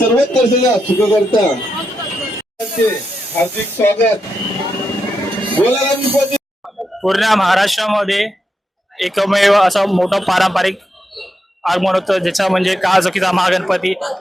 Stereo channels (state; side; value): normal; both; correlation 0.85